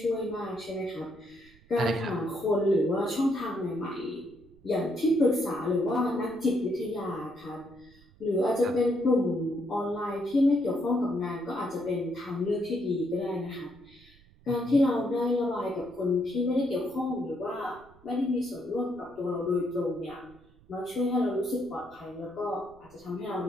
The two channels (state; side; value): noise; right; rumble, 27 dB below the sound